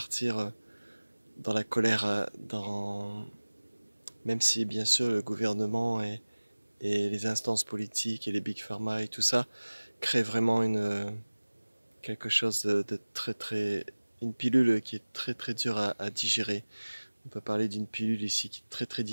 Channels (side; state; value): both; inverted; correlation -1.00